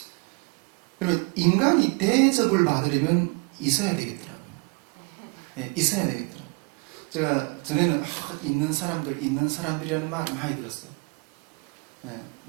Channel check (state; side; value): quieter; left; 32.1 dB